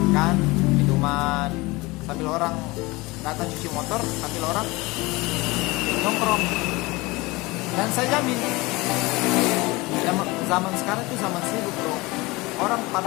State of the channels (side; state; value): right; quieter; 22.7 dB